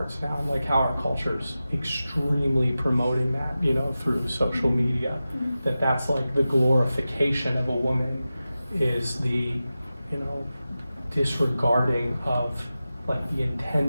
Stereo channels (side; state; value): both; inverted; correlation -0.94